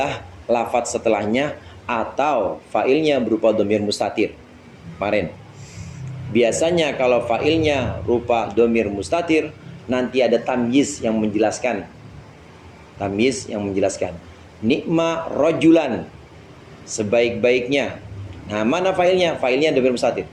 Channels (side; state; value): both; identical; correlation 1.00